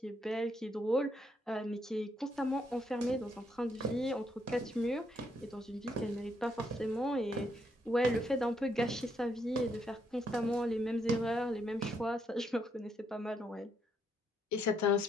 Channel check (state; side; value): normal; both; correlation 0.75